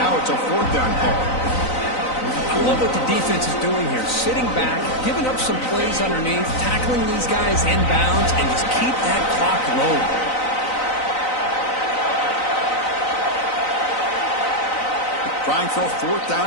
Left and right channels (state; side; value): late; right; 3.9 ms